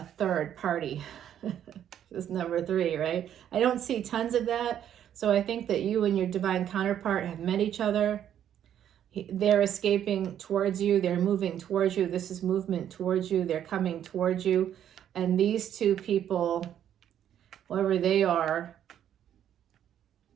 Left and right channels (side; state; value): left; quieter; 10.2 dB